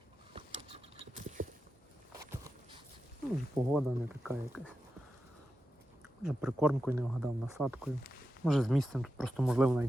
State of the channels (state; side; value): normal; both; correlation 0.90